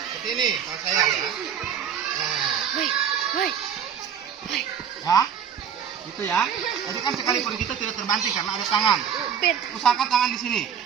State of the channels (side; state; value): left; quieter; 8.1 dB